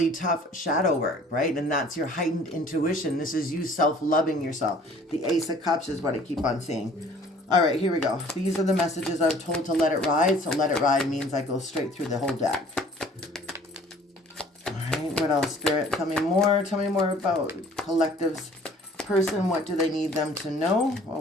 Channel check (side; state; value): both; normal; correlation 0.53